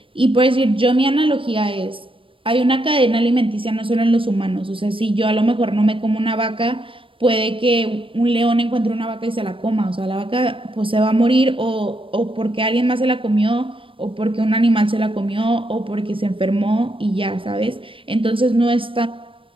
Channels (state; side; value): late; left; 0.25 ms